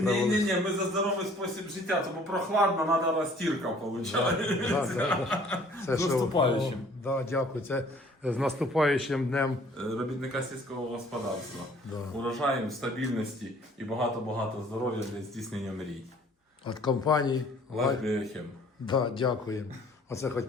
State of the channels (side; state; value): both; normal; correlation 0.55